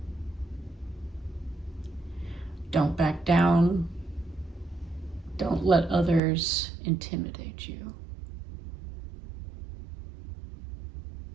Don't back down. Don't let others intimidate you.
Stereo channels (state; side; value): drops out; left; at 6.2 s